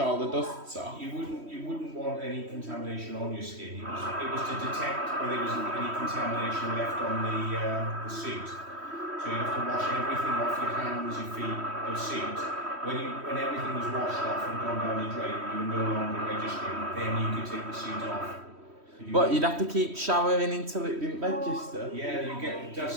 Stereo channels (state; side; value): late; left; 3.1 ms